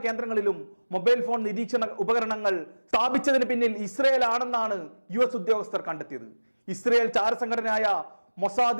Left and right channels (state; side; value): inverted; both; correlation -1.00